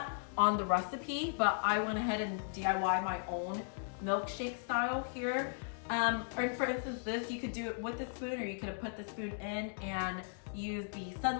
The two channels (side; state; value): right; silent; digital silence